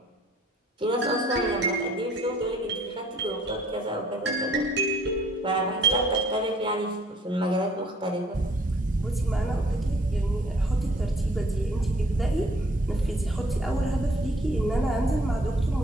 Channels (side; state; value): both; normal; correlation 0.59